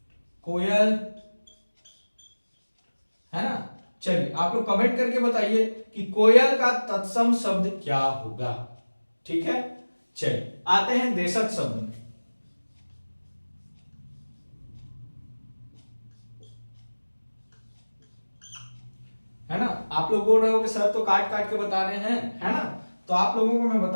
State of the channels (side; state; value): both; inverted; correlation -1.00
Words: कोयल, है ना। चलिए आप लोग कमेंट करके बताइए कि कोयल का तत्सम शब्द क्या होगा। ठीक है, चलिए आते हैं देशज शब्द में। है ना, आप लोग बोल रहे हो कि सर तो काट काट के बता रहे हैं, है ना, तो आप लोगों को मैं